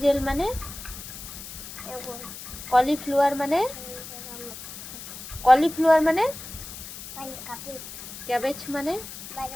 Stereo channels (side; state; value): left; noise; hiss, 12 dB below the sound